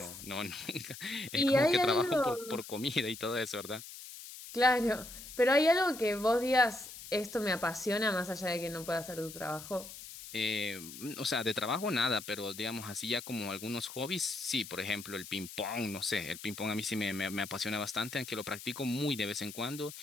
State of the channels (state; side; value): noise; left; hiss, 13 dB below the sound